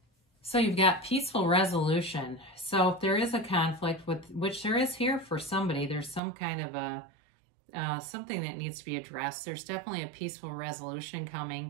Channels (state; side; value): drops out; left; at 6.2 s